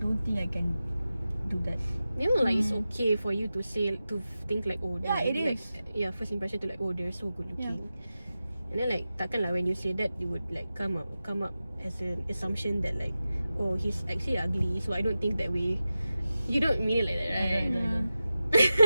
don't think I can do that. Memang like it's okay for you to say, to think like, oh Yeah, it like, is. yeah, first impression to like, oh they're so good looking. And then like takkan lah when you say that you would like come up as an assumption that like, oh he's actually ugly, so I don't think that way. You don't mean it like that, right?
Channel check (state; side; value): inverted; both; correlation -0.93